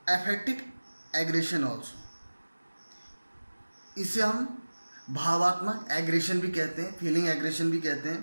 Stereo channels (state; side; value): inverted; both; correlation -1.00